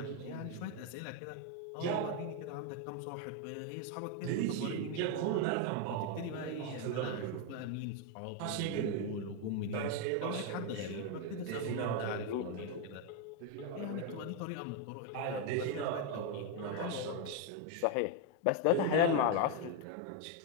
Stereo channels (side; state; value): both; different; correlation 0.01